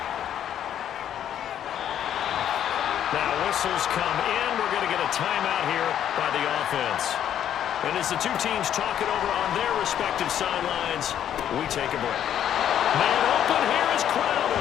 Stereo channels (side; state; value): right; quieter; 10.2 dB